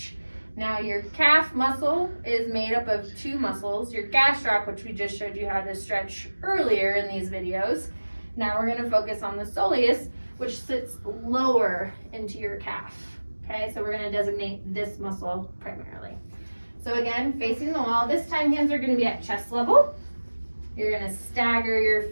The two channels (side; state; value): both; inverted; correlation -1.00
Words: Now your calf muscle is made up of 2 muscles, your gastroc, which we just showed you how to stretch earlier in these videos. Now we're going to focus on the soleus, which sits lower into your calf. Okay, so we're going to designate this muscle primarily. So again, facing the wall, this time hands are going to be at chest level. You're going to stagger your